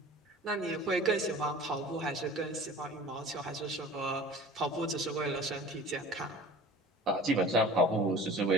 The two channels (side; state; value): both; normal; correlation 0.43